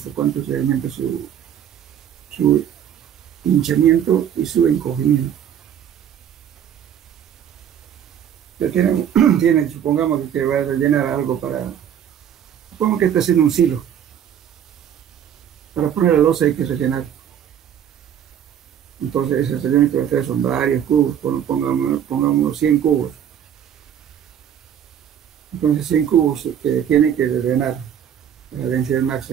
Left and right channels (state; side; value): quieter; left; 9.4 dB